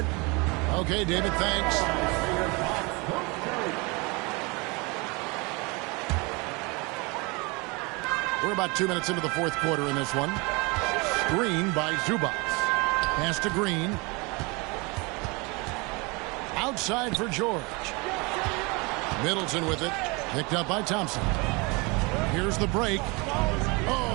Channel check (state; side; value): quieter; left; 27.7 dB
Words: Okay, David, thanks. We're about 2 minutes into the fourth quarter in this one. Screen by Zubac. Pass to Green. Outside for George. Middleton with it. Picked up by Thompson. Here's the break.